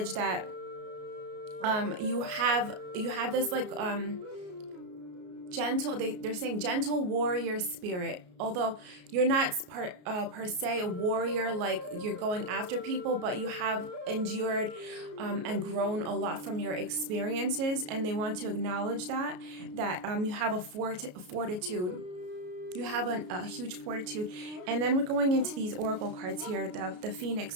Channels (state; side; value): late; left; 33 ms